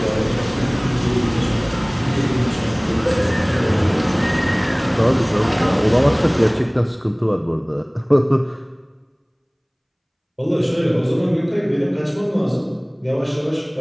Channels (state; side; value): identical; both; correlation 1.00